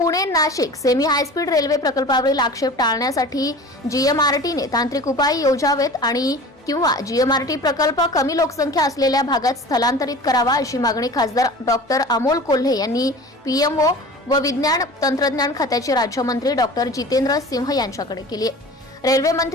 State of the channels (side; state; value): both; normal; correlation 0.39